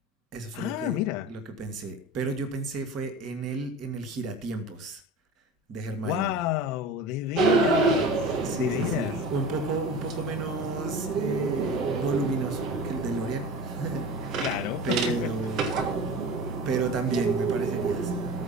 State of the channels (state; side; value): normal; both; correlation 0.34